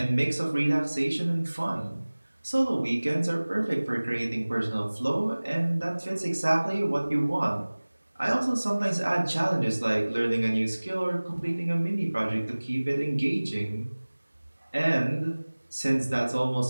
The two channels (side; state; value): both; inverted; correlation -1.00